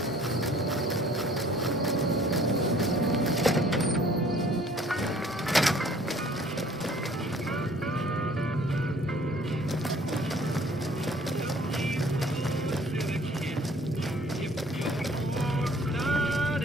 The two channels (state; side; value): normal; both; correlation 0.55